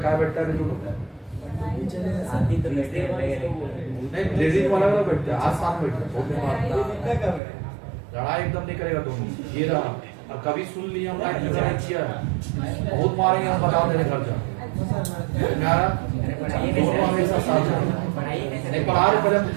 क्या बैठता है दोनों? नहीं, लेडीज वाला वाला बैठता है, आज साथ बैठता है। लड़ाई एकदम नहीं करेगा दोनों। ये रहा। और कभी सुन लिया हम लाइट में किया है, बहुत मारेंगे हम, बता देने घर जा। दोनों हमेशा साथ नहीं पढ़ा रहे, पहले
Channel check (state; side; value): drops out; left; at 7.4 s